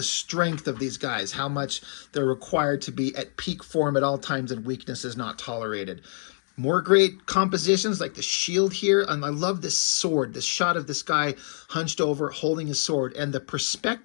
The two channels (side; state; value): right; silent; digital silence